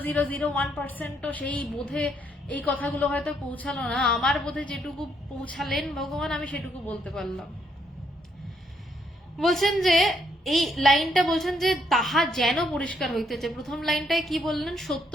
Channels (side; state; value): both; normal; correlation 0.73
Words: সেই বোধে এই কথাগুলো হয়তো পৌঁছালো না। আমার বোধে যেটুকু পৌঁছালেন ভগবান, আমি সেটুকু বলতে পারলাম। বলছেন যে এই লাইনটা বলছেন যে তাহা যেন পরিষ্কার হইতেছে। প্রথম লাইনটায় কি বললেন? সত্য